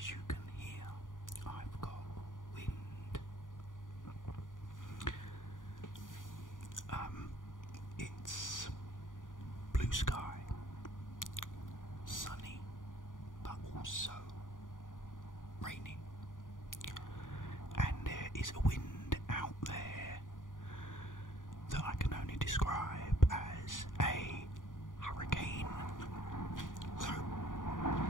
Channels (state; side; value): late; right; 0.88 ms